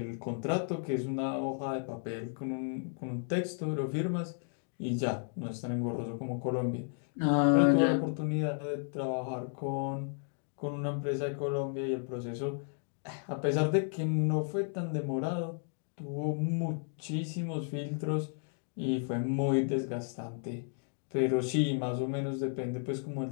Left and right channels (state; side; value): silent; right; 55 dB below the other